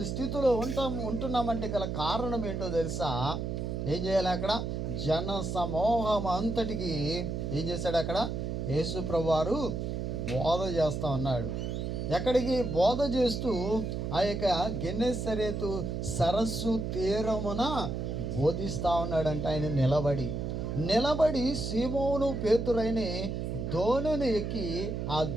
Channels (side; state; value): right; noise; hum, 3 dB below the sound